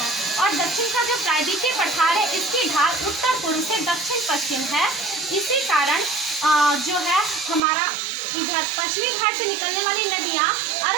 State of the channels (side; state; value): left; drops out; at 7.6 s